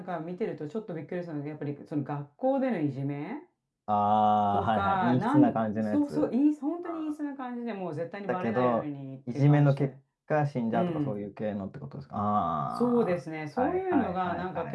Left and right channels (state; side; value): identical; both; correlation 1.00